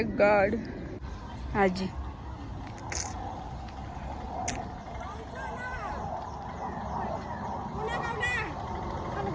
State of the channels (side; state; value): both; identical; correlation 1.00